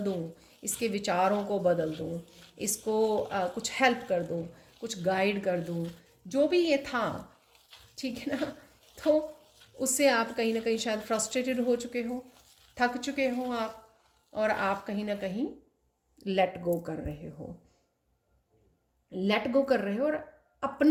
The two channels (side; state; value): both; identical; correlation 1.00